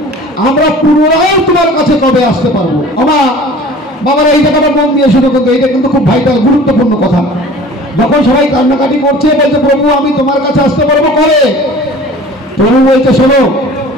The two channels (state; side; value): normal; both; correlation 0.44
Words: আমরা পুনরায় তোমার কাছে কবে আসতে পারবো। আমার বাবারা এই জায়গাটা মন দিয়ে শুরু করতো, এটা কিন্তু খুব ভাইটাল গুরুত্বপূর্ণ কথা। যখন সবাই কান্নাকাটি করছে, বলছে প্রভু আমি তোমার কাছে আসতে পারবো কবে? প্রভু বলছে শোনো,